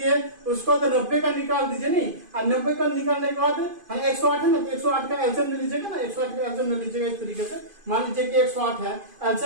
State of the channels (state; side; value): late; left; 2.5 ms